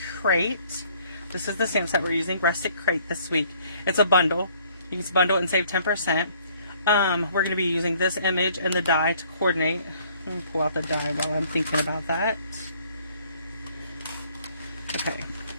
Crate. This is the stamp set we're using, Rustic Crate, this week. It's a bundle. You can bundle it and save 10%. We're going to be using this image and the die to coordinate. Let me pull out the die while I'm thinking about that. Okay.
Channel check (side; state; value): both; inverted; correlation -0.61